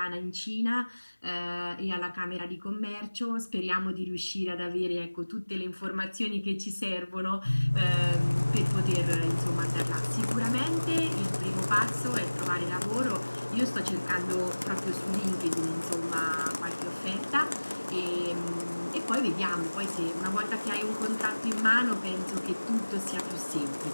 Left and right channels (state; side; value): inverted; both; correlation -1.00